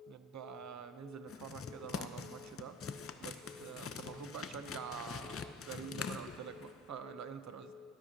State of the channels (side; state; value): both; normal; correlation 0.39